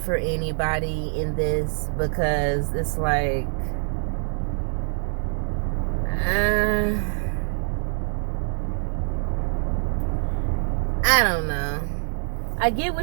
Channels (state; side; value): silent; left; 62 dB below the other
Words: anybody in this, because it's like, I don't know. I get